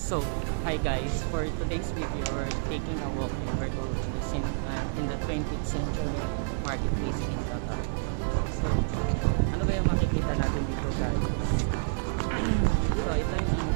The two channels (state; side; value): silent; left; 56 dB below the other